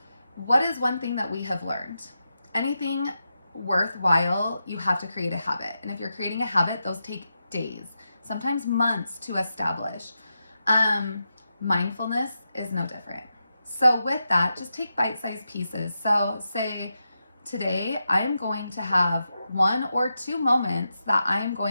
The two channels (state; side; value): inverted; both; correlation -0.88